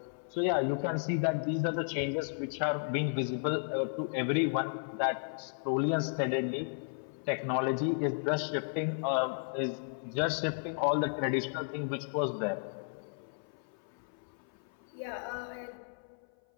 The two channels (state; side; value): silent; right; 55 dB below the other